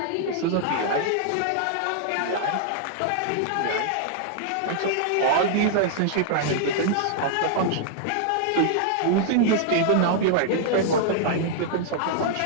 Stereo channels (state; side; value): different; both; correlation -0.01